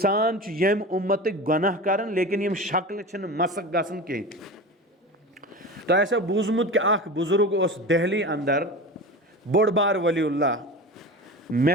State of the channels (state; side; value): normal; both; correlation 0.30